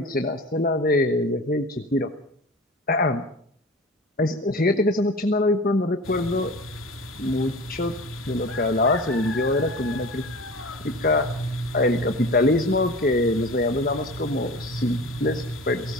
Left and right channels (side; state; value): both; normal; correlation 0.36